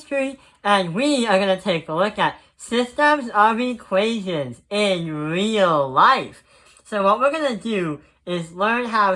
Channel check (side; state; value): both; identical; correlation 1.00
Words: and we are going to take a look at systems of equations in real life. So what we're going to do is learn